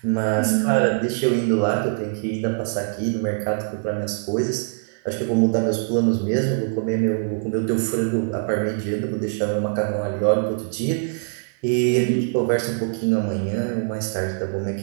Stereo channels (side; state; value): left; silent; digital silence